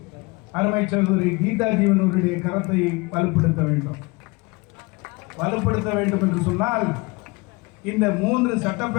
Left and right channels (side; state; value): right; quieter; 25.6 dB